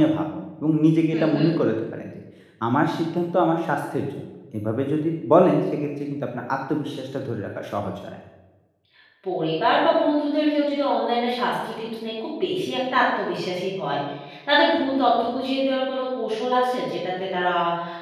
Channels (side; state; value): both; identical; correlation 1.00